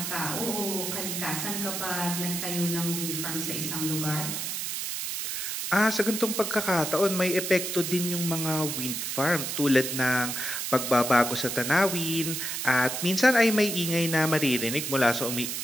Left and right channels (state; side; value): noise; right; hiss, 3 dB below the sound